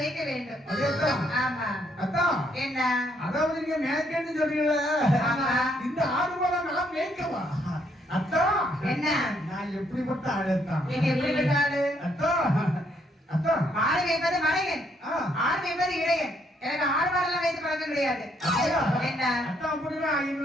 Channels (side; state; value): both; normal; correlation 0.72